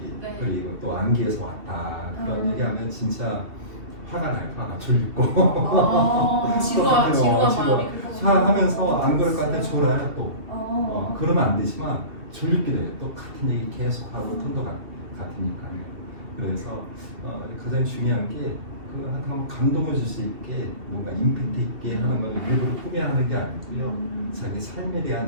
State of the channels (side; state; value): left; late; 2.7 ms